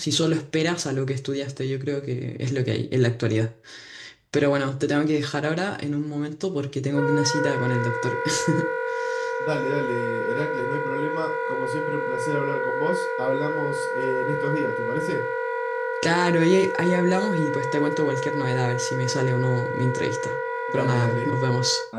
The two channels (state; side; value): identical; both; correlation 1.00